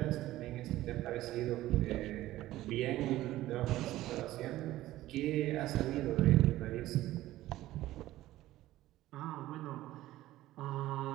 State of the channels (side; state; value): left; quieter; 15.5 dB